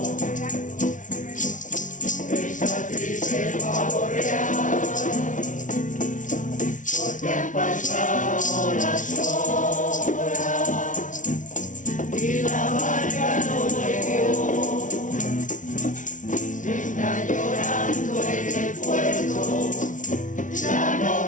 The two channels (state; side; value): late; right; 0.37 ms